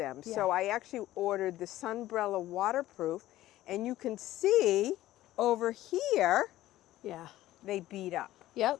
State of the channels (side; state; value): right; quieter; 15.0 dB